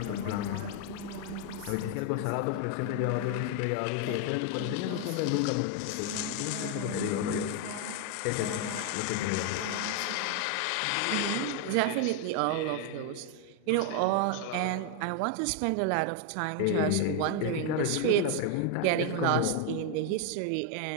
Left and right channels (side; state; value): both; different; correlation 0.01